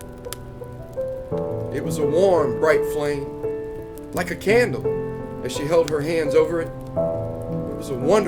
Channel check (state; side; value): identical; both; correlation 1.00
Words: It was a warm, bright flame, like a candle, as she held her hands over it. It was a